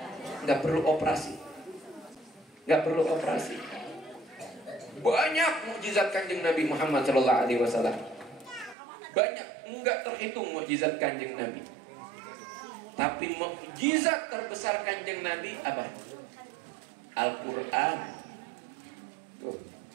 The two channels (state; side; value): drops out; left; at 8.8 s